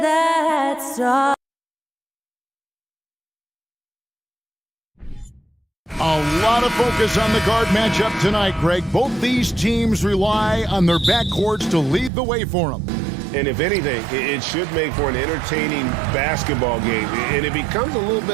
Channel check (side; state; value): left; drops out; at 12.1 s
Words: that stop? A lot of focus on the guard matchup tonight, Greg. Both these teams rely on their backcourts to lead the way for them. And if anything, it should make for an entertaining basketball game. And it becomes a little